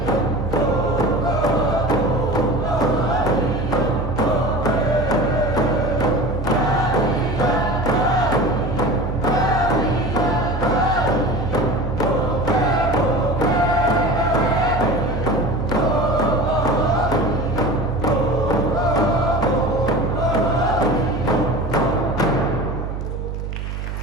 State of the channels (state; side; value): noise; right; hum, 5 dB below the sound